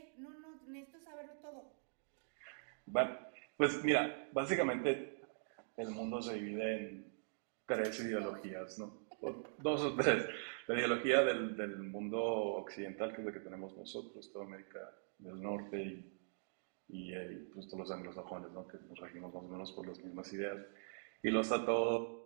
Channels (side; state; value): left; silent; digital silence